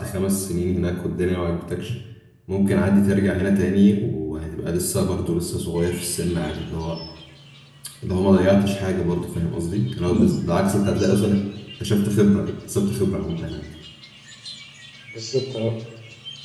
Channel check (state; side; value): identical; both; correlation 1.00